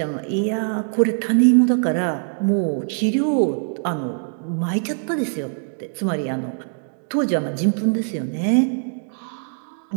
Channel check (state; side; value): silent; left; 64 dB below the other